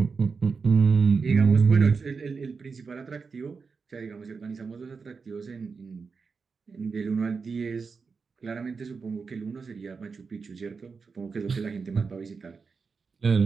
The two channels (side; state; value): left; quieter; 5.0 dB